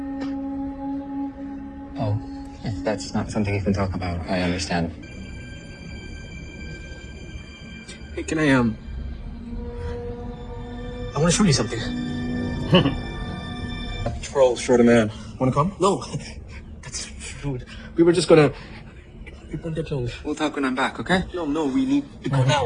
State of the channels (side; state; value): both; identical; correlation 1.00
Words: Oh, if that's not something you can talk about, I understand. Hey, can I want to show you something. Troll, short a man. Wanna come? No, that's rude. We were just gonna. We'll talk when I'm back, okay? No, we need to go